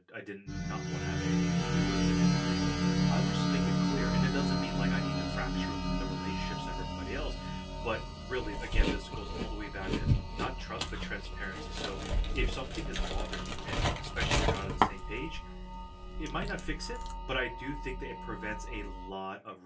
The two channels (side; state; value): both; identical; correlation 1.00